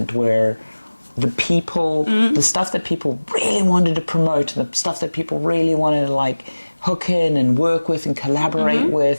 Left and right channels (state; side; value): inverted; both; correlation -1.00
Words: where the people, the stuff that people really wanted to promote, the stuff that people really wanted to like hook in and work with and collaborate